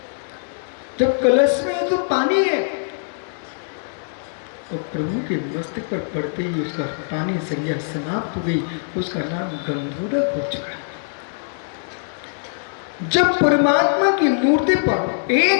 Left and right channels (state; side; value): silent; right; digital silence